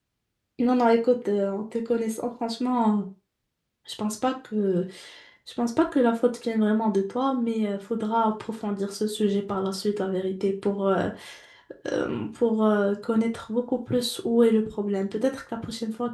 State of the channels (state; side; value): identical; both; correlation 1.00